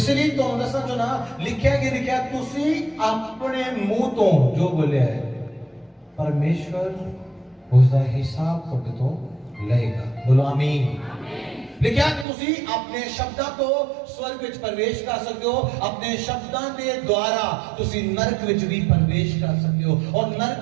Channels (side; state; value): left; drops out; at 12.2 s